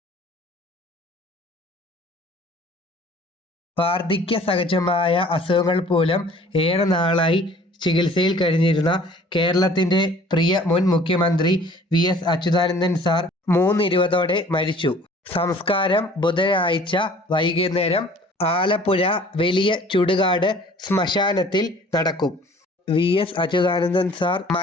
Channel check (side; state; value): both; normal; correlation 0.51